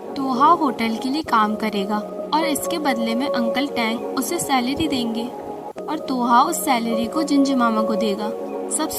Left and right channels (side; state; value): both; identical; correlation 1.00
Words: तोहा होटल के लिए काम करेगा और इसके बदले में अंकल टैंग उसे सैलरी देंगे और तोहा उस सैलरी को जिंजर मामा को देगा। सब